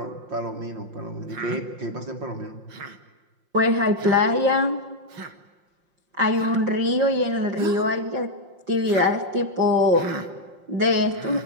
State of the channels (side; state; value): left; late; 5.7 ms